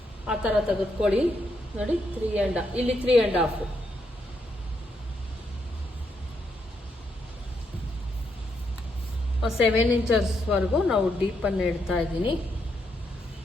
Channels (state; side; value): normal; both; correlation 0.78